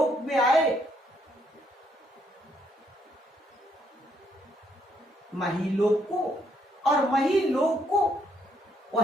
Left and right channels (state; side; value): normal; both; correlation 0.72